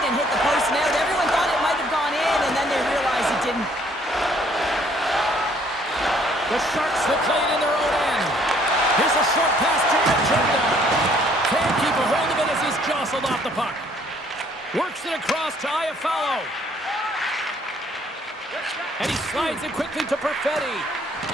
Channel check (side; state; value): both; normal; correlation 0.62